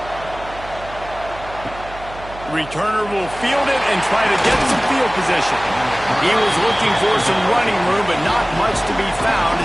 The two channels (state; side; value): noise; right; hum, 16 dB below the sound